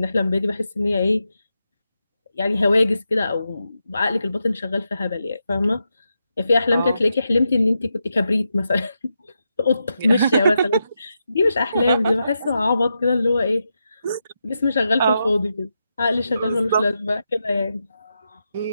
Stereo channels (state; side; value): inverted; both; correlation -0.86